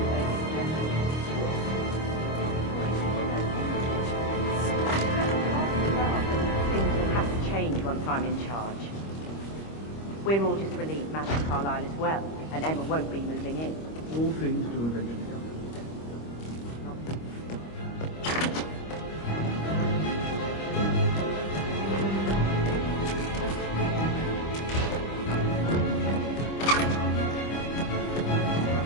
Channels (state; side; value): late; right; 25 ms